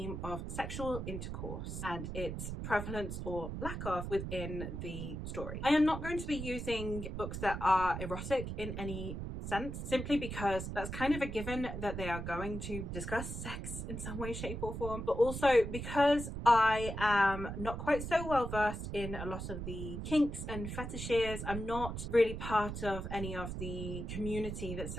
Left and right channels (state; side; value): noise; right; rumble, 6 dB below the sound